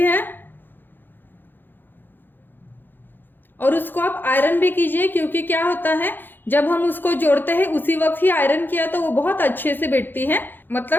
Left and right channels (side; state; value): right; late; 0.094 ms